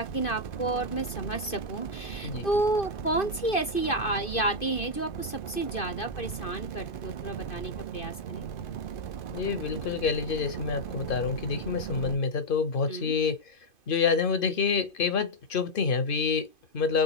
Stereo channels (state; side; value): late; right; 2.5 ms